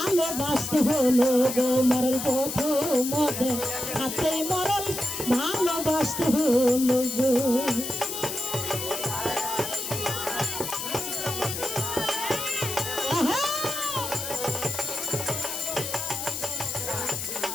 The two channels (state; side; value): noise; left; hiss, 5 dB below the sound